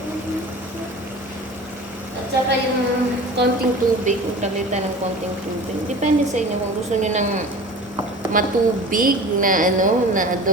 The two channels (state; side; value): normal; both; correlation 0.39